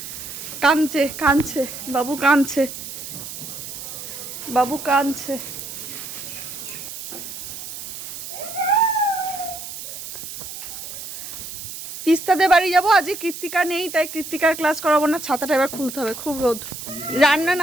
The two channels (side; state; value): right; noise; hiss, 10 dB below the sound